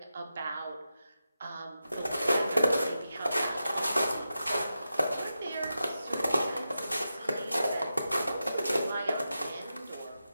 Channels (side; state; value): both; inverted; correlation -0.90